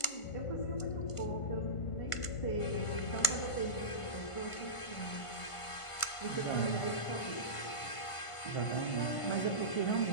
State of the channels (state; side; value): late; right; 1.5 ms